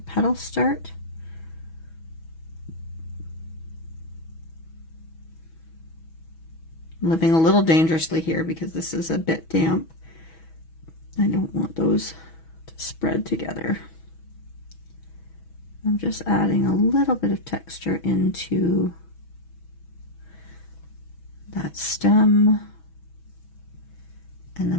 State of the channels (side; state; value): right; late; 6.2 ms